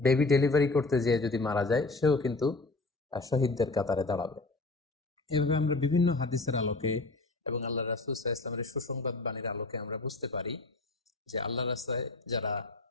বেবি ডেলিভারি করতে যেয়ে যদি মারা যায় সেও কিন্তু শহীদদের কাতারে দাঁড়াবে। এভাবে আমরা বিভিন্ন হাদিসের আলোকে এবং আল্লাহ রাসূল সাল্লাল্লাহু আলাইহি ওয়াসাল্লামের সুসংবাদ বাণীর আলোকে আমরা বুঝতে পারি যে আল্লাহর রাস্তায় যারা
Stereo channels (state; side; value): quieter; right; 3.3 dB